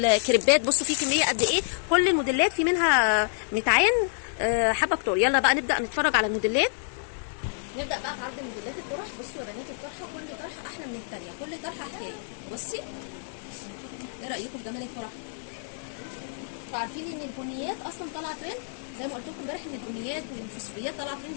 بصوا في كميه قد ايه، كل الموديلات في منها متعين حبه كتور. يلا بقى نبدا نتفرج على الموديلات. نبدا بقى في عرض موديلات الطرح. بصوا يا بنات الطرحه، كل طرحه احلى من الثانيه، كل طرحه حكايه. بصي ايه رايكم في جمال الطرح؟ انتوا عارفين ان البنيات اصلا طالعه ترند، زي ما قلت لكم امبارح ان البنيات والفوسفوريات طالعه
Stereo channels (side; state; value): right; silent; digital silence